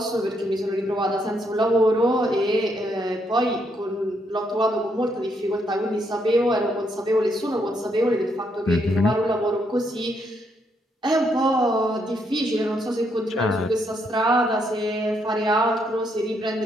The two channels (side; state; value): both; normal; correlation 0.75